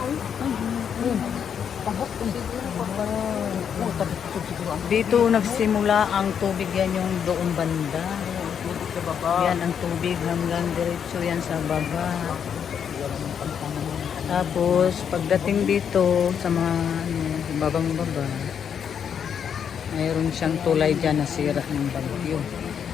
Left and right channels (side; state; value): right; quieter; 7.9 dB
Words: Ay, tabok kung siguro pa ba. Oh, tabok siguro. Dito nagsimula ang tubig, yan yung doong banda. Tubig sa baba. Yan ang tubig hanggang diretso yan sa baba. Tapos pagdating dito sa mga babang baba, mayroon siyang tulay dyan na sira ng bagyo.